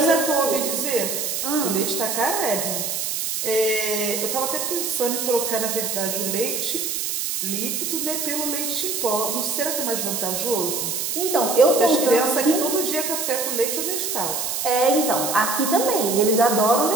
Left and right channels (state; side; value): noise; right; hiss, 2 dB below the sound